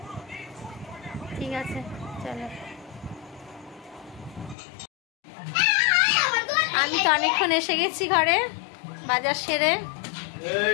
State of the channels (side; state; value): right; drops out; at 4.5 s